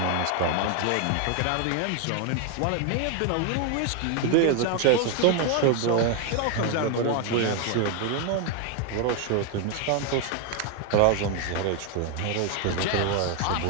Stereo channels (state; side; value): different; both; correlation 0.01